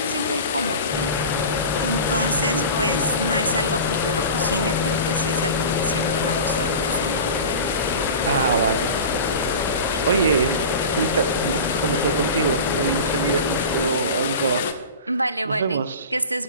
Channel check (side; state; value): both; inverted; correlation -0.33